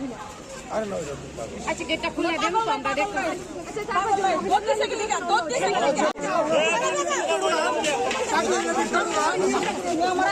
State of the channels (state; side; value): identical; both; correlation 1.00